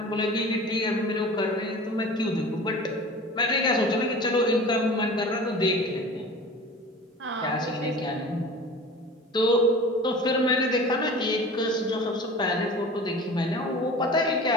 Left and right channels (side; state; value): both; normal; correlation 0.39